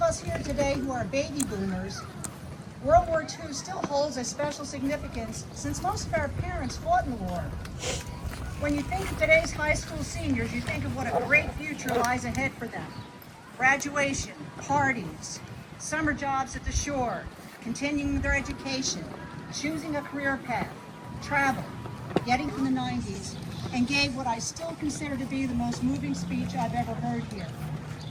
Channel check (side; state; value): both; identical; correlation 1.00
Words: us here today who are baby boomers, World War II still holds a special significance since most of our parents fought in the war. When you think of today's high school seniors, you think of what a great future lies ahead for them. Graduation, parties, summer jobs at the shore, continuing their education, choosing a career path, travel, getting from the 90s, and gave what I still consider to be the most moving speech I've ever heard here.